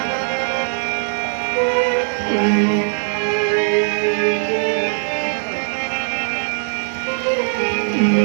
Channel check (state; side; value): silent; left; 66 dB below the other